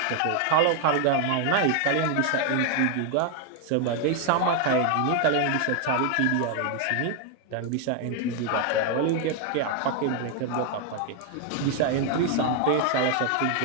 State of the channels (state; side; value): different; both; correlation 0.01